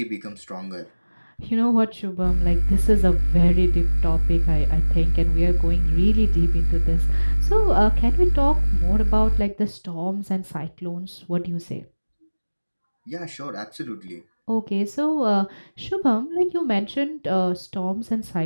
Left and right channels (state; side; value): inverted; both; correlation -1.00